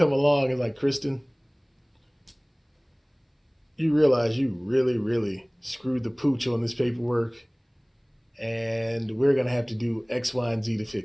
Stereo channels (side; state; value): both; identical; correlation 1.00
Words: along and like, Kristen, you realize you really, really screwed the pooch on this paperwork, and we're going to have to do X, Y, and Z to